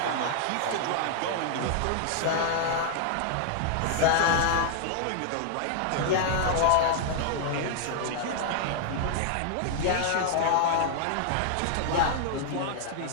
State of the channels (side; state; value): both; different; correlation -0.01